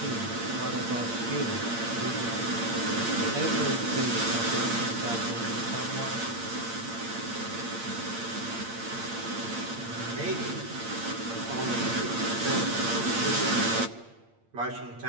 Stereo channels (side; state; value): left; late; 8.7 ms